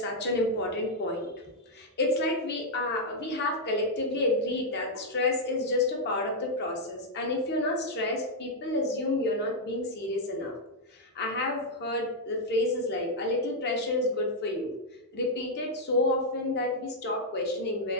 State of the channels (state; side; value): normal; both; correlation -0.02